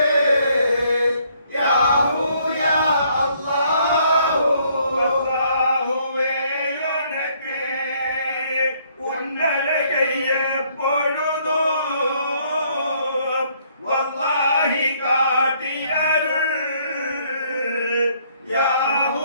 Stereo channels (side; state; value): both; inverted; correlation -0.66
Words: யா வல்லாஹி காட்டி அருள் யாஹூ